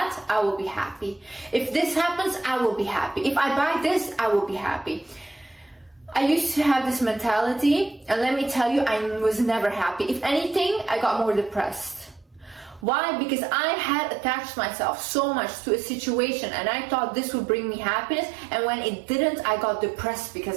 I will be happy. If this happens, I will be happy. If I buy this, I will be happy. I used to have this mentality, and let me tell you, I was never happy. If anything, I got more depressed. Why? Because I had attached myself so much to a situation, and I thought this would bring me happiness, and when it didn't, I got depressed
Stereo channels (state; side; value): drops out; left; at 12.9 s